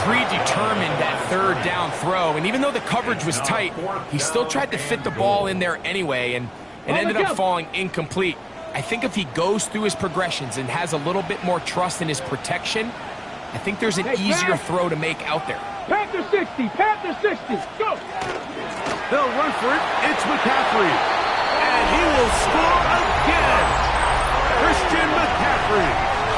predetermined that third down throw, and even though the coverage was tight, he still tried to fit the ball in there anyway, and it ended up falling incomplete. I think if he goes through his progressions and has a little bit more trust in his protection, I think there's an easier throw to make out there. Panther 60, Panther 60. Go. They'll run for it. It's McCaffrey. And he will score again. Christian McCaffrey.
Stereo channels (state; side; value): identical; both; correlation 1.00